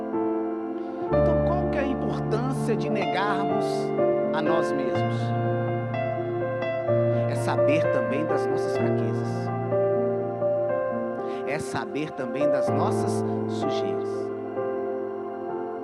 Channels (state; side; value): identical; both; correlation 1.00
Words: Então, qual que é a importância de negarmos a nós mesmos? É saber também das nossas fraquezas. É saber também das nossas sujeiras.